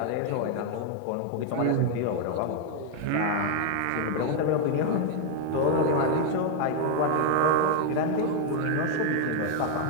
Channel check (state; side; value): different; both; correlation 0.00